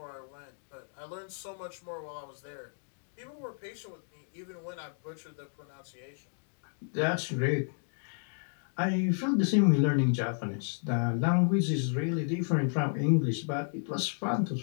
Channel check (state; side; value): silent; right; 56 dB below the other